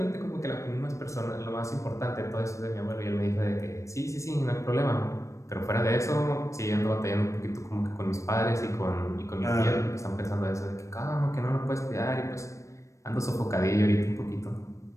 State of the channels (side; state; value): right; late; 0.15 ms